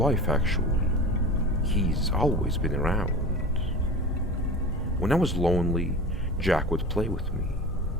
actually. He's always been around. When I was lonely, Jack would play with me.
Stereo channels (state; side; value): normal; both; correlation 0.33